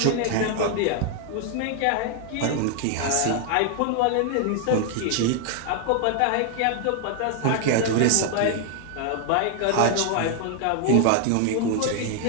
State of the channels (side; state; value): both; different; correlation 0.00